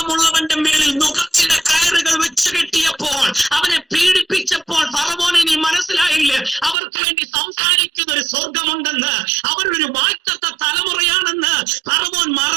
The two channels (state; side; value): drops out; left; at 6.8 s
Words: മേളിൽ നുഖത്തിന്റെ കയറുകൾ വെച്ച് കെട്ടിയപ്പോൾ, അവനെ പീഡിപ്പിച്ചപ്പോൾ ഫറവോനെ നീ മനസ്സിലായില്ല അവർക്ക് വേണ്ടി സംസാരിക്കുന്ന ഒരു സ്വർഗമുണ്ടെന്ന്, അവരൊരു വാഴ്ത്തത്ത തലമുറയാണെന്ന് ഫറവോൻ